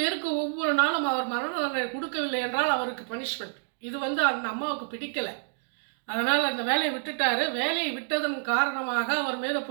பேருக்கு ஒவ்வொரு நாளும் அவர் மரண தண்டனை கொடுக்கவில்லை என்றால் அவருக்கு பனிஷ்மெண்ட். இது அந்த அம்மாவுக்கு பிடிக்கலை. அதனால் அந்த வேலையை விட்டுட்டார். வேலையை விட்டதன் காரணமாக அவர் மீது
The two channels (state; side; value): silent; left; digital silence